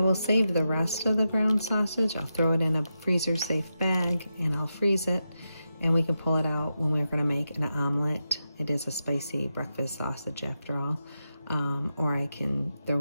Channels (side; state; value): both; inverted; correlation -0.88